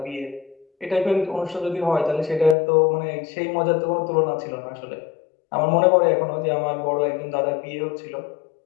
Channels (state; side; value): drops out; right; at 2.6 s